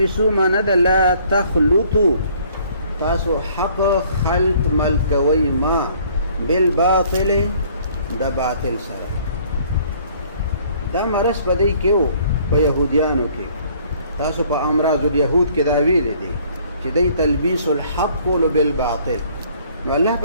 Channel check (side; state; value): both; inverted; correlation -0.59